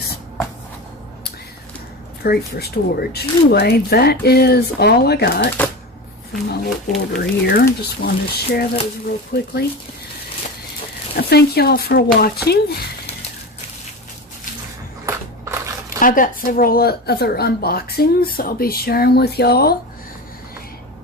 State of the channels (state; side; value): normal; both; correlation 0.26